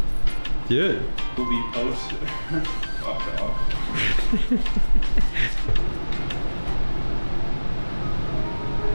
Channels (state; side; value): inverted; both; correlation -1.00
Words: Do it. Will be posted. Fuck off.